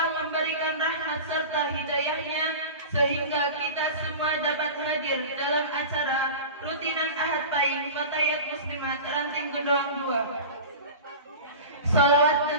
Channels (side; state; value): both; inverted; correlation -0.33